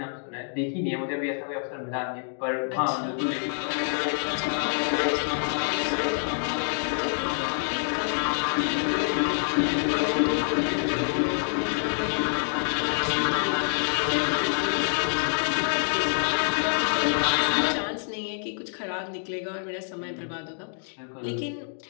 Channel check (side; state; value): right; silent; digital silence